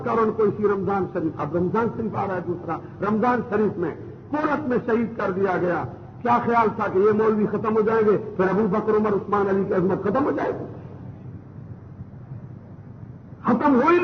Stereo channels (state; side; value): identical; both; correlation 1.00